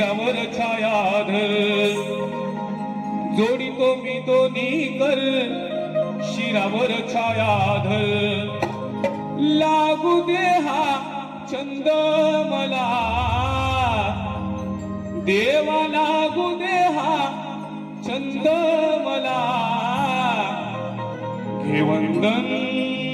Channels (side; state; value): both; identical; correlation 1.00